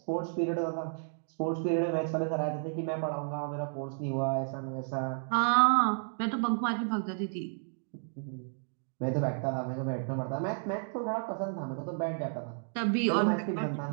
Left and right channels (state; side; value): silent; left; digital silence